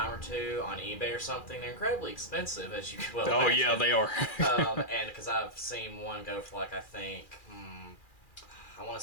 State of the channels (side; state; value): right; late; 2.4 ms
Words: or two on eBay or something. They're incredibly expensive, as you well Oh imagine. yeah, they are. And because I've seen one go for like, I think, I want